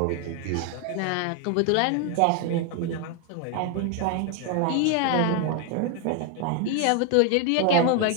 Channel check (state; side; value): different; both; correlation 0.01